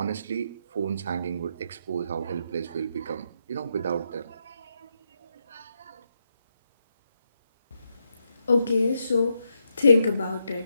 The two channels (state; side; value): inverted; both; correlation -0.81